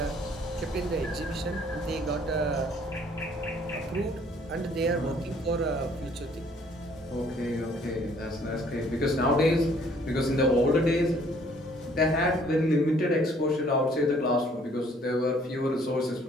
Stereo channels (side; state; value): both; normal; correlation 0.60